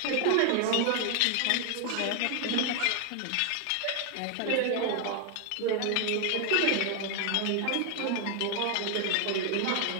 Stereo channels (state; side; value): different; both; correlation 0.00